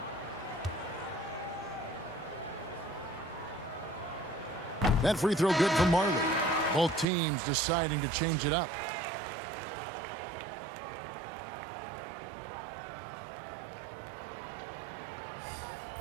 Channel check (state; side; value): drops out; left; at 7.1 s